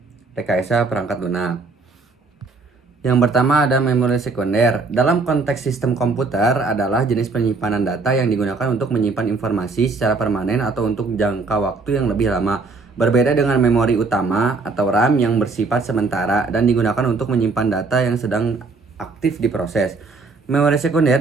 Rekayasa Perangkat Lunak. Yang pertama ada memori sekunder. Dalam konteks sistem komputer adalah jenis penyimpanan data yang digunakan untuk menyimpan informasi secara permanen atau untuk jangka waktu yang lebih lama. Berbeda dengan memori utama atau RAM yang bersifat sementara dan digunakan untuk menyimpan data yang sedang aktif diproses. Memori sekunder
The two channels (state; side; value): quieter; left; 4.0 dB